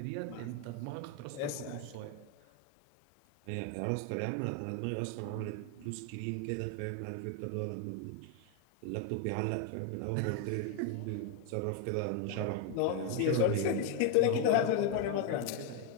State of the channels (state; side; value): different; both; correlation 0.01